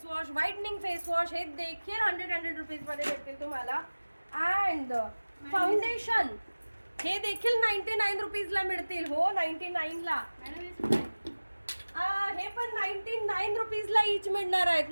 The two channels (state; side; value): inverted; both; correlation -1.00